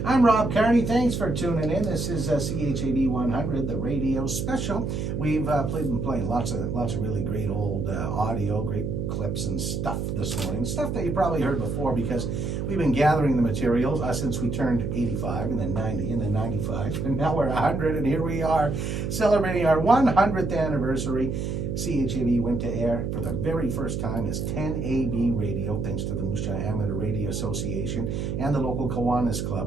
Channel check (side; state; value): right; noise; hum, 2 dB below the sound